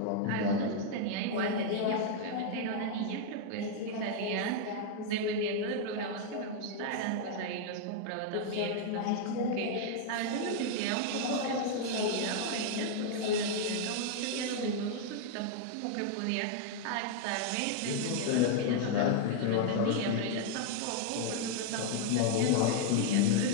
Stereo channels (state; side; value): different; both; correlation 0.00